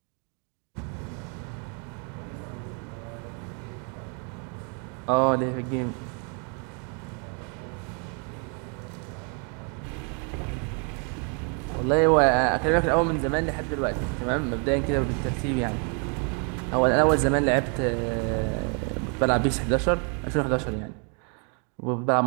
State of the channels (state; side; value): quieter; left; 37.9 dB